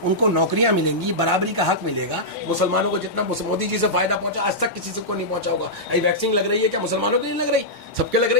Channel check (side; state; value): both; normal; correlation -0.11